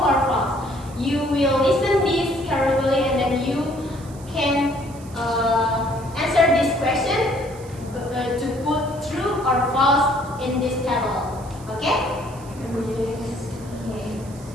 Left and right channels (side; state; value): right; noise; hiss, 22 dB below the sound